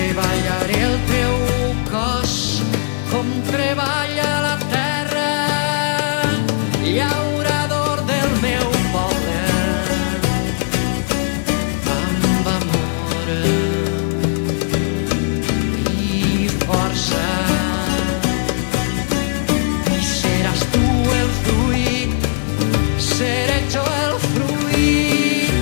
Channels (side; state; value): right; silent; digital silence